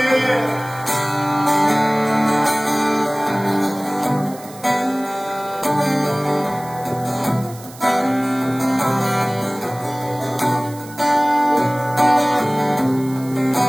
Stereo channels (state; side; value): noise; right; hiss, 19 dB below the sound